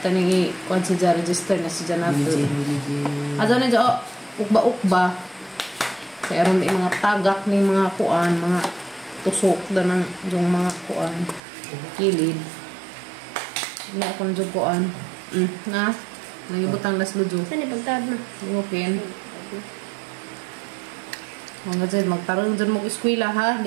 tani kuan sa ja register na si Janato. Adong ni jo ukba-ukba. Kaya ron di mga tagak ni mga kuan, mga tusok da ng yung mga kuan kilid. Na kon jo kuan. Na nagibutang las lujo. Saan ipagtawad mo? Okay. Mga dyan, magtarong dyan mong eskwela ha.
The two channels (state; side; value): drops out; left; at 11.4 s